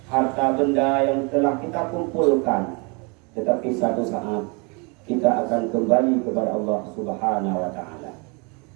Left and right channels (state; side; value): quieter; left; 31.5 dB